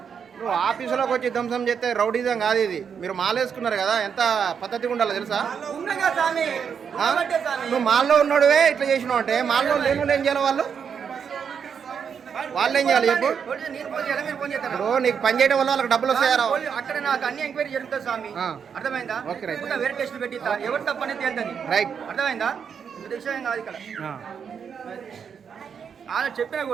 నువ్వు ఆఫీసులోకి వచ్చి ధ్వంసం చేస్తే రౌడీజం కాదు ఇది. మీరు మాలేసుకున్నారు కదా, ఎంత పద్ధతిగా ఉండాలో తెలుసా? ఉన్నగా స్వామి. ఉన్నబట్టే స్వామి. నువ్వు మాల్లో ఉన్నాడువే ఇట్లా చేసినావు అంటే మాల్లో లేని ఏం చేయాలి? వాళ్ళు ఏం చేయాలి చెప్పు? నేను ఫోన్ చేయాలా, మీరు ఫోన్ చేస్తారా? ఇప్పుడు నీకు పని చేయడం వల్ల వాళ్ళకి డబ్బులు వస్తాయారా? అక్కడ నాకు అన్ని ఎంక్వైరీ జరుగుతుంది స్వామి. అర్థమైందా? Okay, right. ఇంకా వేరే టెస్ట్ పెట్టిస్తా, ఎవరు తప్పనేది తేలుతుంది. రైట్. అర్థమైందా? ఇది విషయం కాదు ఇక్కడ. ఆయన చెప్పినా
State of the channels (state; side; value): quieter; left; 7.0 dB